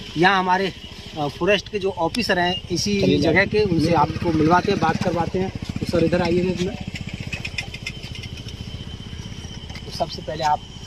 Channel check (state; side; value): identical; both; correlation 1.00